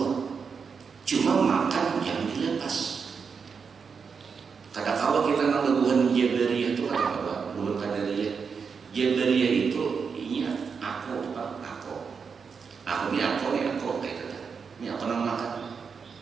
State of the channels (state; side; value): quieter; left; 5.8 dB